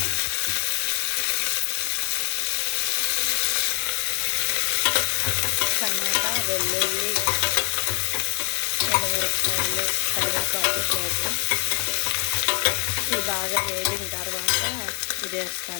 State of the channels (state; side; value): quieter; right; 33.2 dB